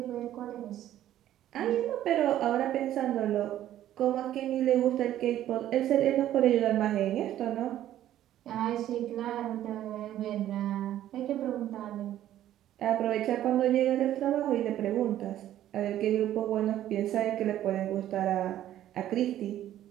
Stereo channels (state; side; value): quieter; left; 12.4 dB